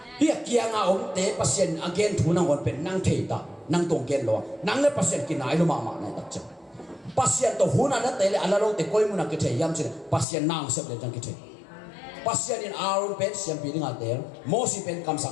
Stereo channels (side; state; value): right; drops out; at 10.2 s